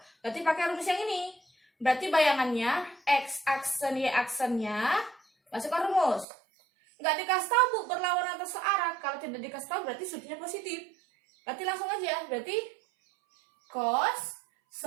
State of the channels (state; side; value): drops out; left; at 6.2 s